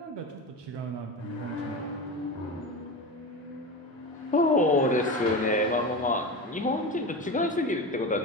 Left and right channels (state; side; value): normal; both; correlation 0.25